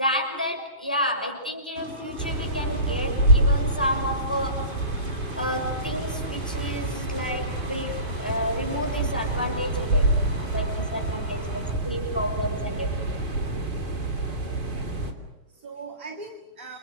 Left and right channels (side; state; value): both; inverted; correlation -0.36